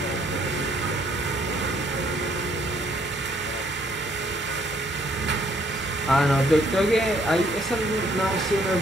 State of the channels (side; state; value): both; normal; correlation 0.66